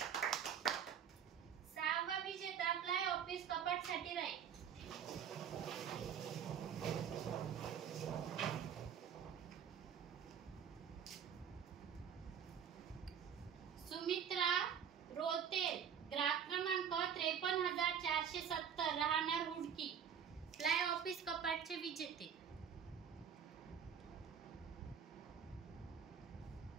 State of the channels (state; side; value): quieter; left; 7.9 dB